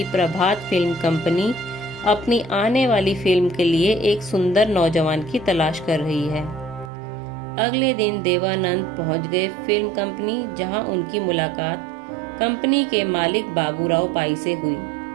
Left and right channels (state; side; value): drops out; left; at 6.9 s